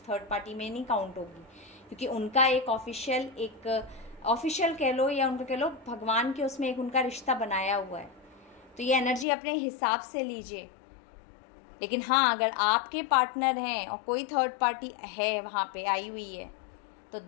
थर्ड पार्टी में नहीं काउंट होगी, क्योंकि उनका एक ऑफिशियल कह लो या उनको कह लो भगवान के उसमें एक उनका रिश्ता बनाया हुआ है। तो ये एनर्जी अपने हिसाब से लीजिए। लेकिन हाँ, अगर आपके पार्टनर हैं और कोई थर्ड पार्टी है वहाँ पे आई हुई है, तो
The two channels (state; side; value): drops out; right; at 9.2 s